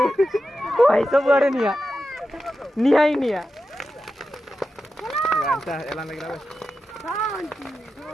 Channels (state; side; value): normal; both; correlation 0.90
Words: भाई सब आड़े निया निया ही निया वांटा एला लगरा बे